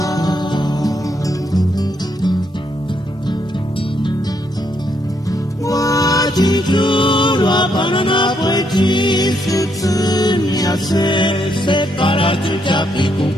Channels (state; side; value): normal; both; correlation 0.75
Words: Guachituru apanana puechi sutsun yase, separa chuchapi con